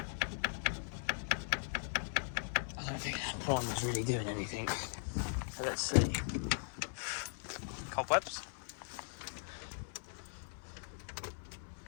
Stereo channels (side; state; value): right; silent; 52 dB below the other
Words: I don't think that primer's really doing anything. So let's see. Cobwebs.